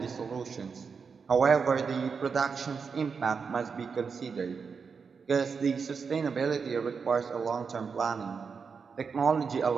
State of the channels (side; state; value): left; quieter; 5.6 dB